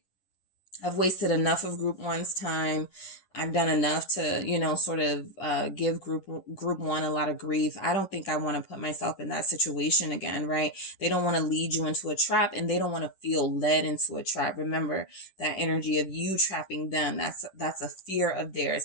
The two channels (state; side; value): late; right; 10 ms